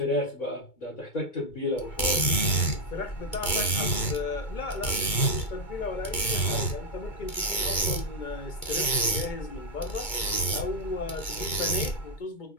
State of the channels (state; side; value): late; right; 2.2 ms